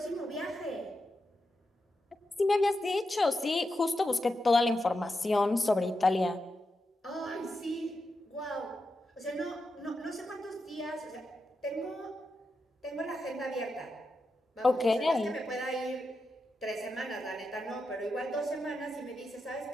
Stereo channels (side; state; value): both; normal; correlation 0.88